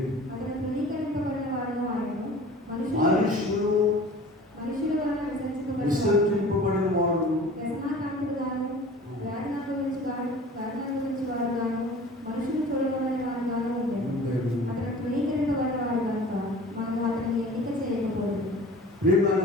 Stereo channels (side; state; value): both; normal; correlation 0.43